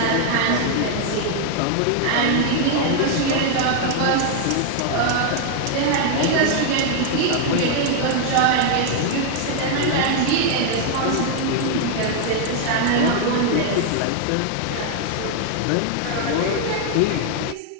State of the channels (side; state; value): both; different; correlation 0.00